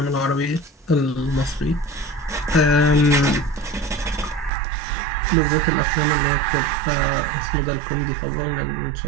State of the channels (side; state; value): left; drops out; at 4.5 s